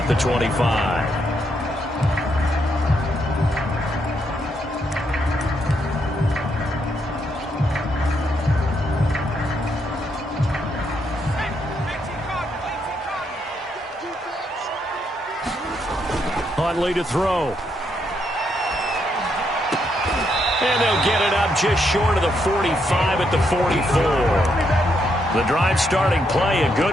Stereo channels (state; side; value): normal; both; correlation 0.77